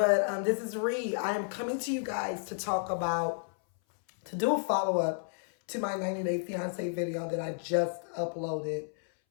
this is Ree. I am coming to you guys to to do a follow-up to my 90 Day Fiance video that I just uploaded.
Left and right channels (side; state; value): right; silent; 57 dB below the other